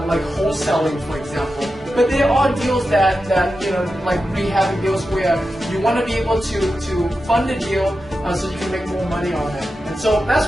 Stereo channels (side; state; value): both; normal; correlation 0.91